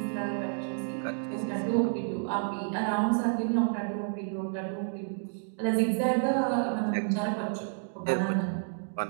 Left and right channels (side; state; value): left; silent; digital silence